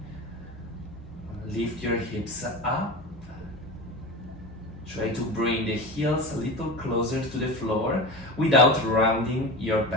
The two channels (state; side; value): normal; both; correlation 0.28